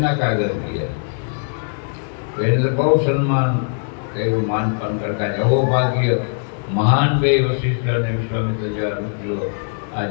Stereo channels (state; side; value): silent; right; 60 dB below the other